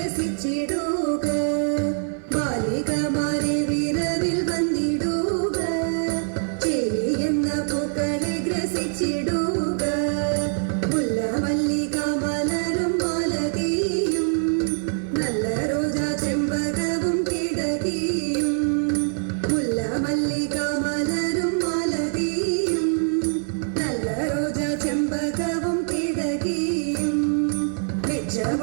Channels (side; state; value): left; silent; 63 dB below the other